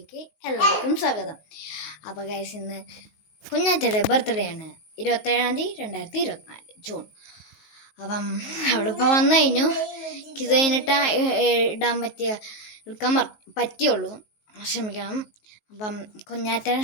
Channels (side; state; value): right; late; 19 ms